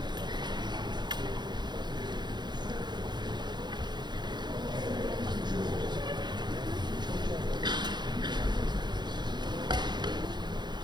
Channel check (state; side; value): late; left; 0.21 ms